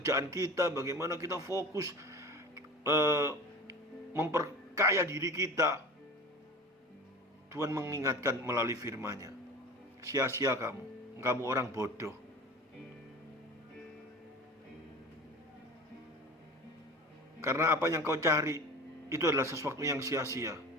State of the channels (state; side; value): normal; both; correlation 0.36